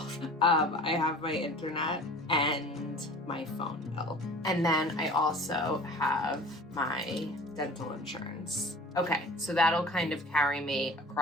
I have my internet and my phone bill. And then I also have my dental insurance. Okay, so that'll kind of carry me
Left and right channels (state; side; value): normal; both; correlation 0.44